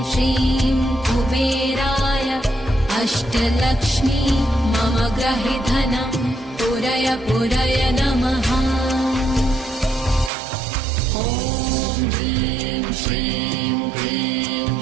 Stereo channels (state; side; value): drops out; left; at 10.3 s